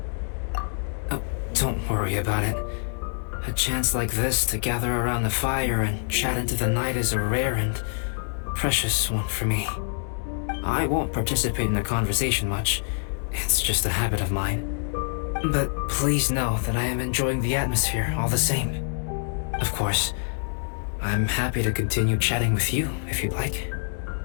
Oh, don't worry about it. A chance like this to gather around the fire and chat into the night is a rare and precious one for me. I won't participate in the conversation much. It's just a habit of mine. But please know that I am enjoying the atmosphere all the same. Of course, I'm happy to continue chatting with you if you'd like.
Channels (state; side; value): silent; right; 60 dB below the other